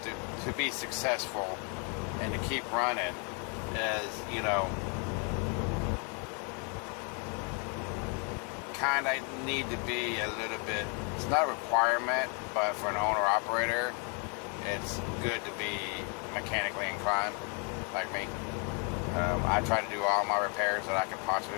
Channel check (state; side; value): quieter; right; 36.9 dB